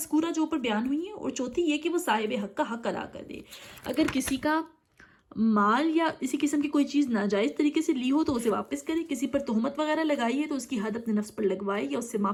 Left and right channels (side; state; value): both; identical; correlation 1.00